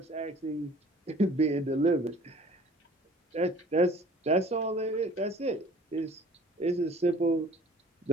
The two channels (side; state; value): both; normal; correlation 0.50